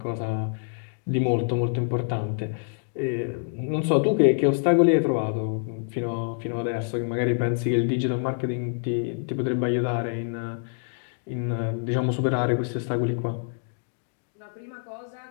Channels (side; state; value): right; silent; digital silence